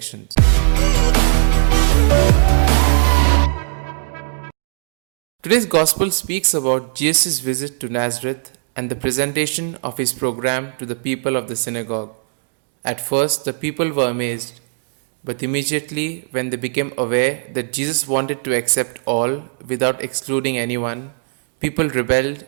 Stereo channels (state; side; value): silent; left; digital silence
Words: Today's Gospel speaks about Jesus' visit to Nazareth and the presentation of his program to the people of the synagogue. At first, the people were amazed, but immediately, when they became aware that Jesus wanted to accept all without excluding anyone, people rebelled